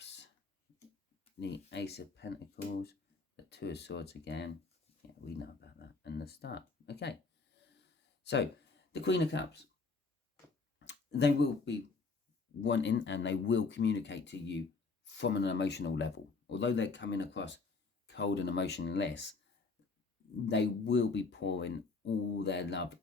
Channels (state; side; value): quieter; right; 4.2 dB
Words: the Ace of Pentacles, the Two of Swords again. Yeah, we know about that. And the Star. Okay. So, the Queen of Cups, they will be wanting and they will communicate to you from an emotional level. Although they're coming across cold and emotionless, they will be pouring all their love